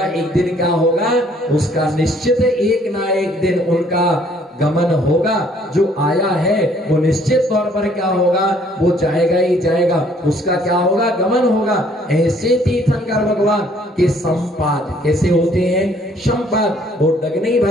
एक दिन क्या होगा? उसका निश्चित एक ना एक दिन उनका गमन होगा। जो आया है वो निश्चित तौर पर क्या होगा? वो जाएगा ही जाएगा, उसका क्या होगा? गमन होगा। ऐसे तीर्थंकर भगवान के संपाद कैसे होते हैं? संपाद, वो डगनी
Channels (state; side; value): normal; both; correlation 0.62